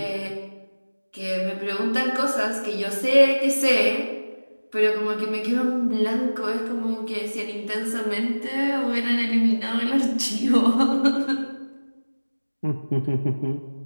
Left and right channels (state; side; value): inverted; both; correlation -1.00